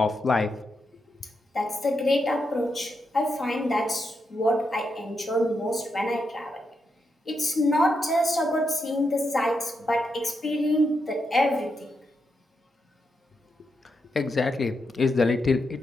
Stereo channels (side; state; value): both; normal; correlation 0.84